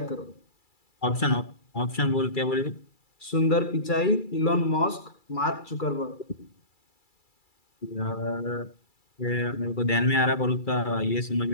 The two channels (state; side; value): late; right; 2.3 ms